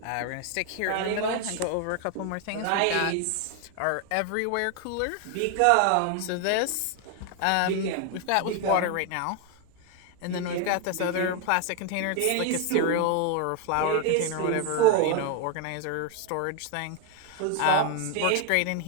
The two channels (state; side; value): different; both; correlation 0.01